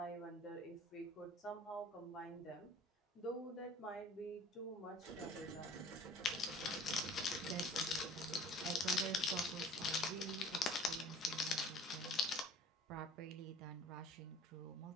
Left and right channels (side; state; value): both; normal; correlation 0.47